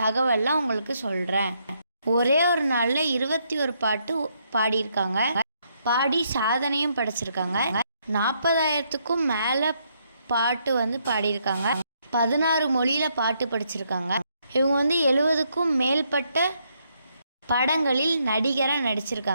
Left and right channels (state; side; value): inverted; both; correlation -0.75